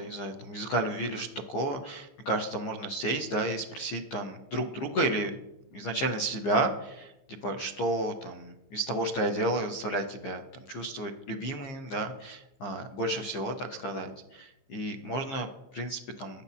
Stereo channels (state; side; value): late; right; 15 ms